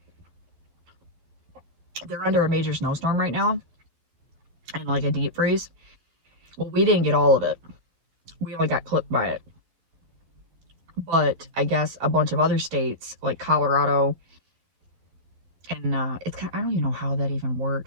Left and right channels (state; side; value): late; left; 12 ms